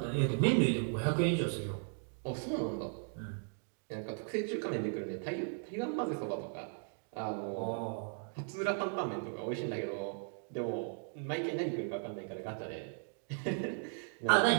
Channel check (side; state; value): left; silent; 53 dB below the other